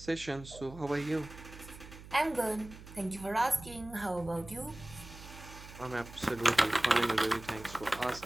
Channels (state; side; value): noise; right; hum, 16 dB below the sound